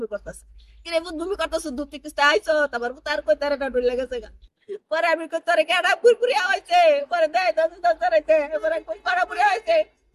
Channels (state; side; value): identical; both; correlation 1.00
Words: করতেছে কিরে পুত ভূমি করতেছে দুধ থেকে আইছো তারপর পুত আর কই তারে না ডুলে গেছে পরে আমি তোরে কেডা পুরপুরি হয়েছে পরে দেয় দাইতে পরে কই পুরপুরি হয়েছে